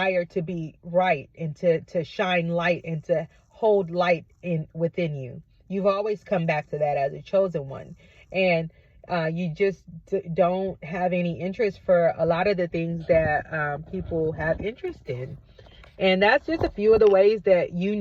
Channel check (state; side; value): identical; both; correlation 1.00